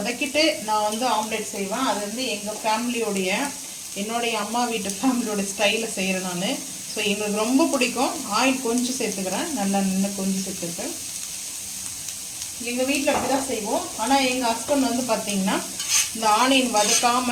நான் வந்து ஆம்லேட் செய்வேன். அது வந்து எங்கள் ஃபேமிலியோடைய, என்னுடைய அம்மா வீட்டு ஃபேமிலியோட ஸ்டைலில் செய்கிறேன் நான். ஸோ எங்களுக்கு ரொம்ப பிடிக்கும். ஆயில் கொஞ்சம் சேர்த்துக்கிறேன், நல்லா நின்று கொஞ்சம் சேர்த்துருக்கேன். எங்கள் வீட்டில் அப்படி தான் செய்வோம். ஆனால் எங்கள் ஹஸ்பண்ட் வந்து பார்த்திங்கன்னா இந்த ஆனியன்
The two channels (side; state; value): both; identical; correlation 1.00